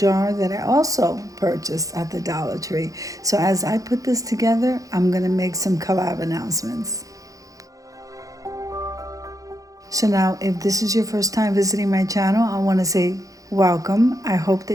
that I also purchased at the Dollar Tree. So as I put this together, I'm going to make some collab announcements. So now, if this is your first time visiting my channel, I want to say welcome. I hope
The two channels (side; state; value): left; late; 0.17 ms